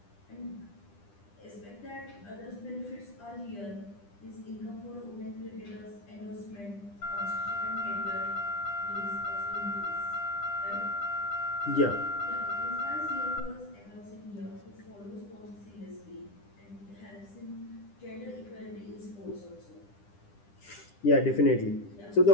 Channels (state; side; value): late; right; 10 ms